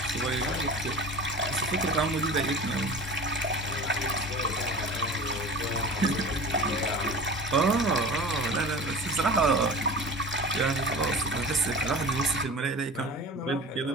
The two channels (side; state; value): both; normal; correlation 0.37